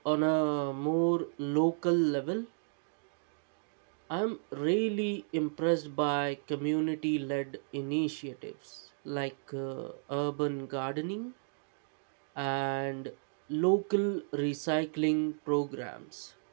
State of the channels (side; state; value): left; silent; digital silence